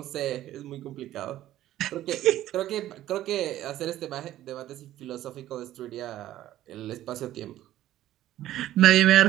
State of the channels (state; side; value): quieter; left; 13.6 dB